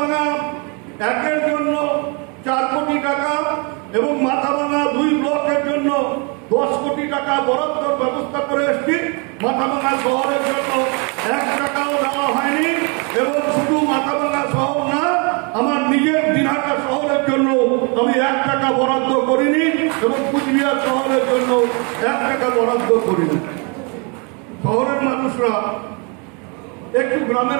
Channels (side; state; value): left; quieter; 33.5 dB